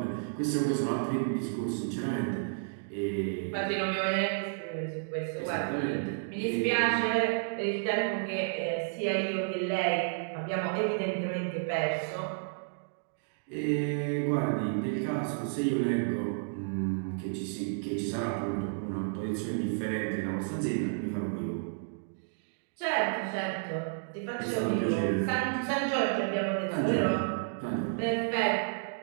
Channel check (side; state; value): left; silent; digital silence